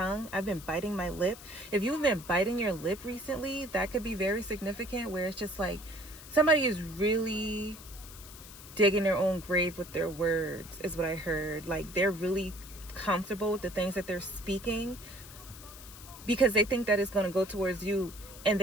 I've been biting my lip. If you've been biting your lip recently, that could be very significant, where it's just like somebody is really digging their own grave with their words, is what I heard. Like, they're really comfortable with the things that they're speaking because they think that it's going to go towards you. And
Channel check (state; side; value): noise; left; hiss, 16 dB below the sound